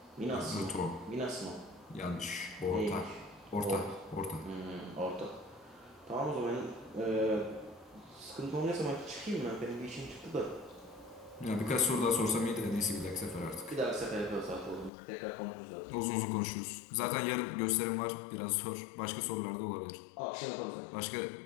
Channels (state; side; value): drops out; right; at 14.9 s